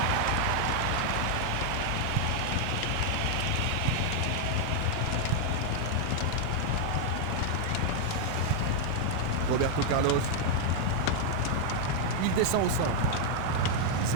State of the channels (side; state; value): both; different; correlation 0.00